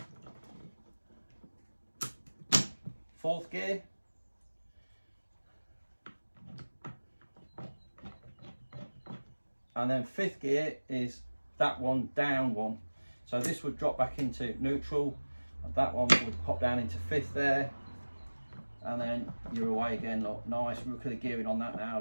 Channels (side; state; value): both; inverted; correlation -1.00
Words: Fourth gear. And then fifth gear is that one down one. So this would drop back into neutral, and that one would pop down into fifth there. And then you're away again, look, nice. Look at the gearing on that now,